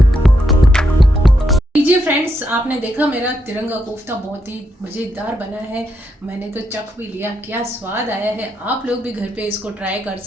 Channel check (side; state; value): both; normal; correlation 0.80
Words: लीजिए फ्रेंड्स, आपने देखा मेरा तिरंगा कोफ्ता बहुत ही मज़ेदार बना है। मैंने तो चख भी लिया, क्या स्वाद आया है। आप लोग भी घर पे इसको ट्राई कर